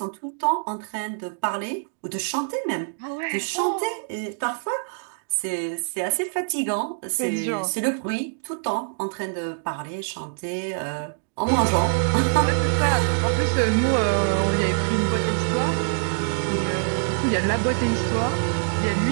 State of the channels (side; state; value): left; silent; digital silence